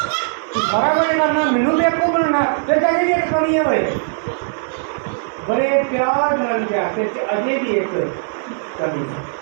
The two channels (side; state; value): left; silent; digital silence